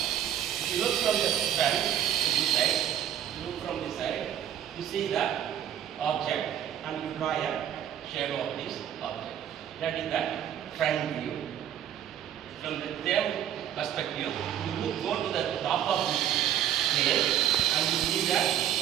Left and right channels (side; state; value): left; quieter; 10.4 dB